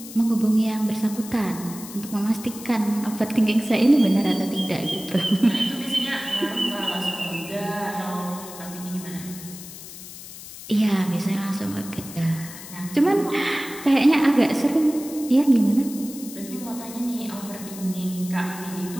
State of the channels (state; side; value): noise; left; hiss, 14 dB below the sound